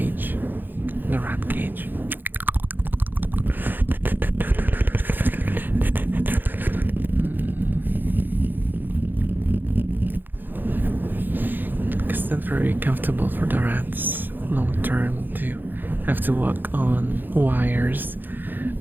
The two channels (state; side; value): late; left; 0.090 ms